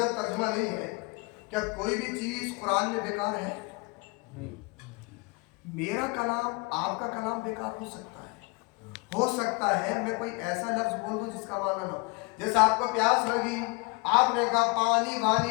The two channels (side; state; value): right; quieter; 27.8 dB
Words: جب ترجمہ نہیں ہے کیا کوئی بھی چیز قرآن میں بیکار ہے؟ میرا کلام آپ کا کلام بیکار ہو سکتا ہے، ہو سکتا ہے میں کوئی ایسا لفظ بول دوں جس کا معنی نہ ہو۔ جیسے آپ کو پیاس لگی، آپ نے کہا پانی